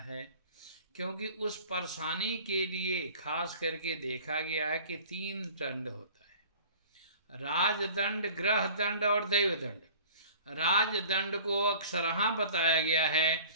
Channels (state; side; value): inverted; both; correlation -0.45